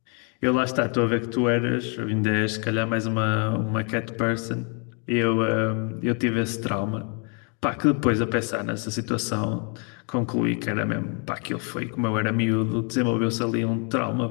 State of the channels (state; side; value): quieter; right; 37.9 dB